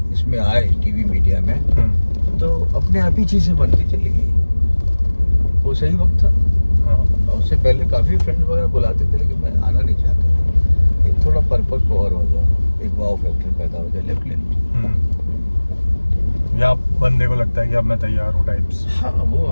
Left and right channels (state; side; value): inverted; both; correlation -1.00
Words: इसमें आए टीवी मीडिया में, तो अपने आप ही चीज़ें बनती चली गई। वो सही वक्त था। और उससे पहले काफ़ी फ्रेंड वगैरह बुलाते थे, लेकिन मैं आना नहीं चाहता था। एक थोड़ा परिपक्व और हो जाओ, एक वाव फैक्टर पैदा हो जाए, लेफ्ट ले लो। या बंदे को लगता है कि अब मैं तैयार हूँ टाइप्स। हाँ, वो